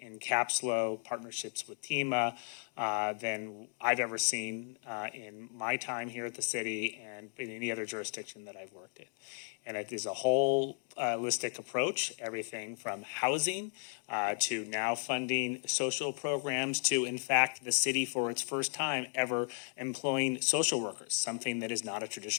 in CAPSLO partnerships with TEMA than I've ever seen in my time here at the city and in any other jurisdiction that I've worked in. And it is a whole holistic approach, everything from housing to now funding social programs to, in fact, the city for its first time ever employing social workers, something that is not a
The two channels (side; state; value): right; silent; 54 dB below the other